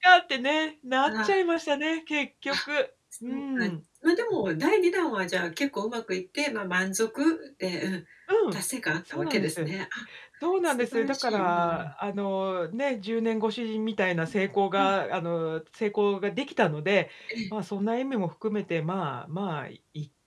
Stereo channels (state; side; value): identical; both; correlation 1.00